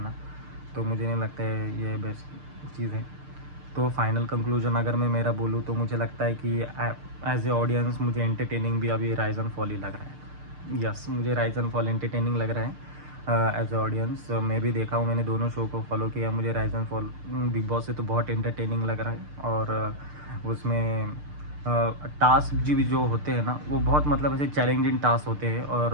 तो मुझे नहीं लगता है ये बेस्ट चीज़ है। तो फाइनल कंक्लूजन अगर मैं मेरा बोलूँ तो मुझे लगता है कि एज ए ऑडियंस मुझे एंटरटेनिंग भी अभी राइज एंड फॉल ही लग रहा है। यस, मुझे राइज एंड फॉल एंटरटेनिंग लग रहा है एज ए ऑडियंस। मैं भी देखा हूँ, मैंने दोनों शो को फॉलो किया, मुझे rise and fall big boss से तो बहुत एंटरटेनिंग लग रहा है। और उसमें टास्क भी जो होते हैं ना, वो बहुत मतलब ऐसे चैलेंजिंग टास्क होते हैं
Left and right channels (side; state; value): left; late; 6.7 ms